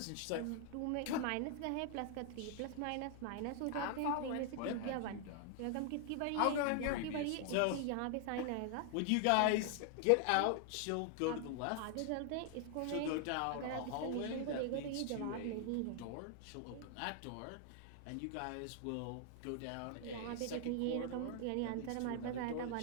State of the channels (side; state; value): both; different; correlation 0.00